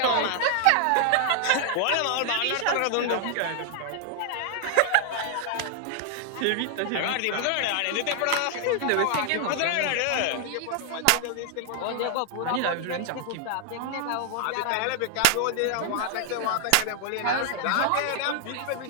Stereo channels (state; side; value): different; both; correlation 0.00